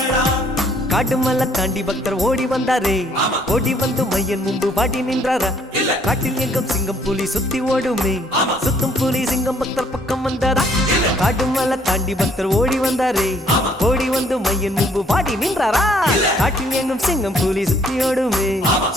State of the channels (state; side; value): normal; both; correlation 0.64